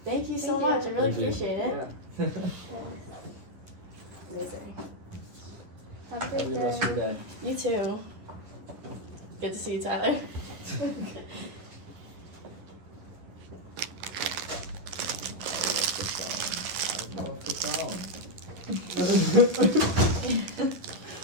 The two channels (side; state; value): left; late; 11 ms